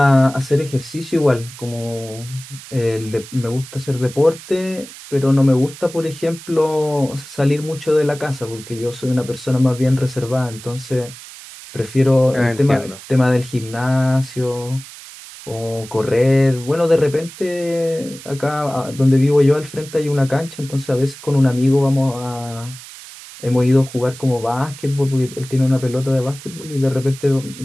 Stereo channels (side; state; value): right; noise; hiss, 16 dB below the sound